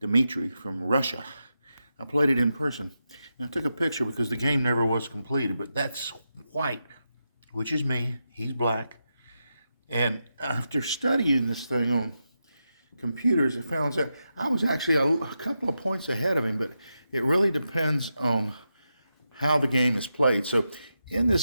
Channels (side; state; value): both; inverted; correlation -0.87